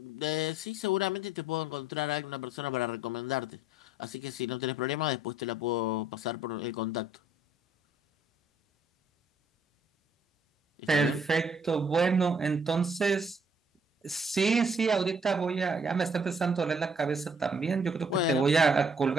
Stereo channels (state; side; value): normal; both; correlation 0.62